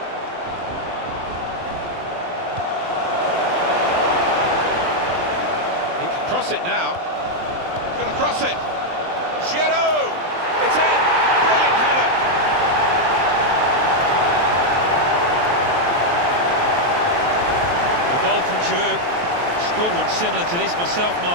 He can cross it now. He's going to cross it. Giroud! It's in! Brilliant header! The goal from Giroud. Scored one similar to this myself,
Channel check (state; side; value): late; left; 23 ms